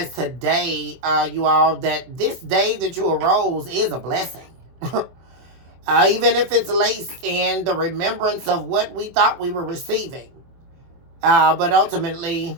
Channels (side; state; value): left; late; 24 ms